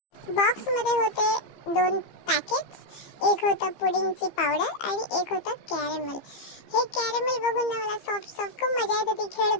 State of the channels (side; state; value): right; late; 15 ms